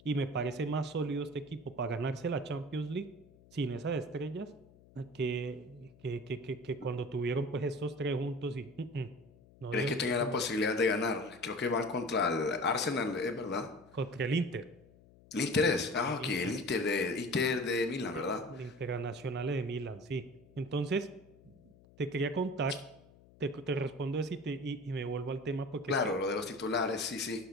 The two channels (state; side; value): noise; left; hum, 25 dB below the sound